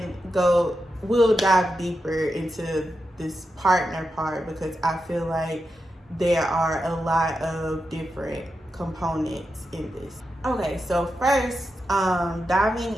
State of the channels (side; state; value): both; normal; correlation 0.88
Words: dive deeper into this partner part, because I feel like there are a lot of different components in this. Okay, so first, diving